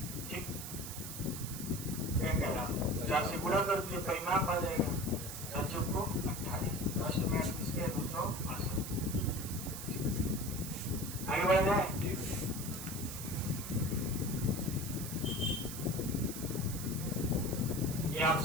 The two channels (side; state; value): right; noise; hiss, 8 dB below the sound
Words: ठीक, क्या कह रहा हूँ 4 से गुणा कर दिए परिमाप आ जाएगा 4 को 28, 10 में 28 के 268। आगे बढ़ जाए। ये